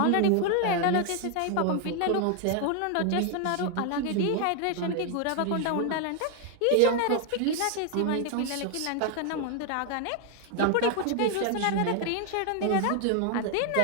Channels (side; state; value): both; different; correlation 0.00